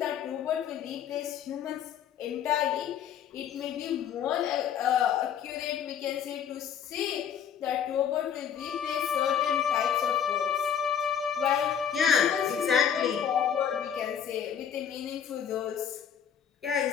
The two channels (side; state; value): right; quieter; 8.5 dB